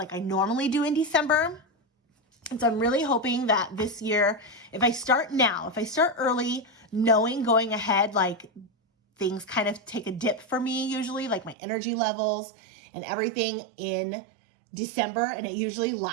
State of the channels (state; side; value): drops out; left; at 11.6 s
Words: I normally do in December. And so I'm really hoping that this year, if I start early, knowing going ahead, like things kind of take a dip for me usually, like my energy levels and everything in December. And it usually